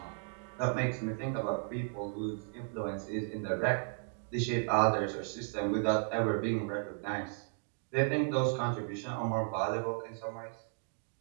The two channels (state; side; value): silent; left; 55 dB below the other